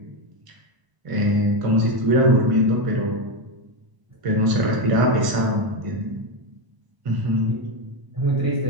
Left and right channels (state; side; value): late; left; 1.0 ms